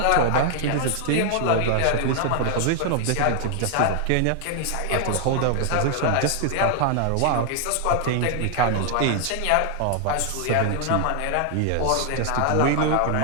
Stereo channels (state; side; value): different; both; correlation 0.00